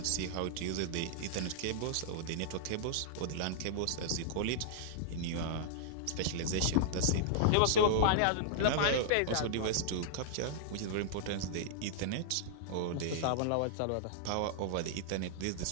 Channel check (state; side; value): different; both; correlation -0.01